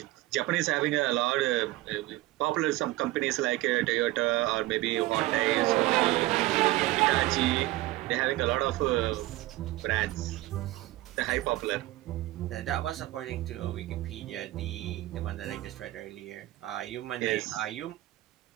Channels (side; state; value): left; quieter; 17.7 dB